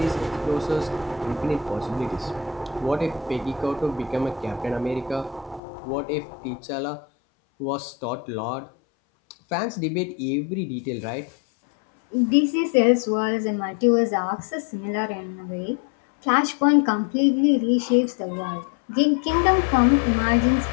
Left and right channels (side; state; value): right; drops out; at 5.6 s